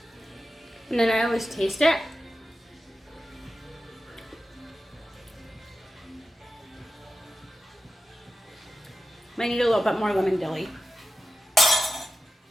And then I always taste it. Might need a little bit more lemon dilly.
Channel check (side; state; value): both; normal; correlation 0.92